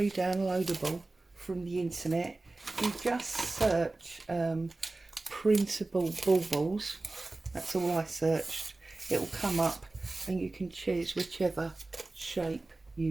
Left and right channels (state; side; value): quieter; left; 3.1 dB